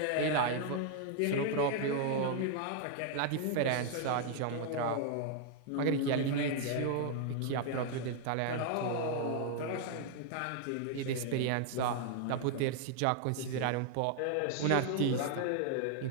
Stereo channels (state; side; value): different; both; correlation 0.00